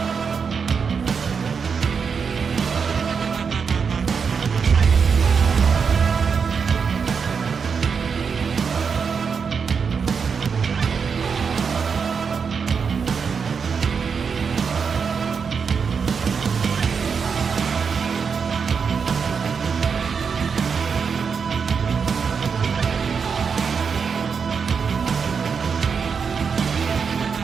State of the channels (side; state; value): left; quieter; 6.0 dB